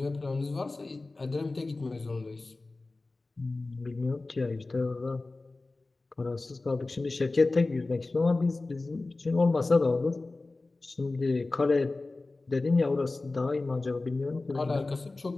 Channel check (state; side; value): quieter; right; 3.3 dB